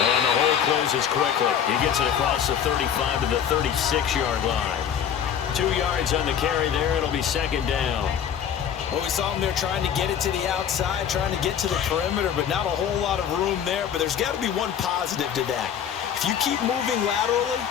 the hole closes quickly. He gets it across the 35 to the 36-yard line. 2 yards on the carry there. It'll be second down. Well, we saw him there trying to get it to the outside, trying to get to the perimeter, but not a whole lot of room there. But there's got to be one positive to that. If you keep moving laterally,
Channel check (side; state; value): right; quieter; 8.7 dB